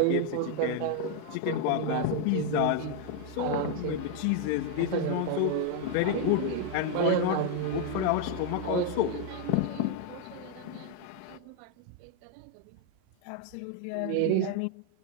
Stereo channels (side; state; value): both; different; correlation 0.00